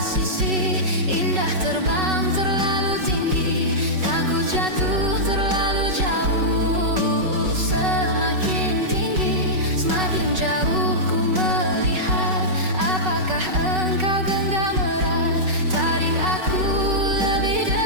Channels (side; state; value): left; late; 5.3 ms